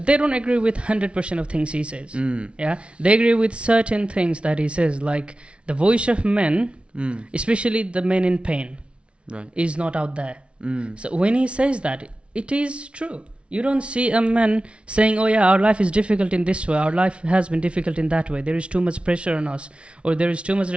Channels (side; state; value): left; late; 0.059 ms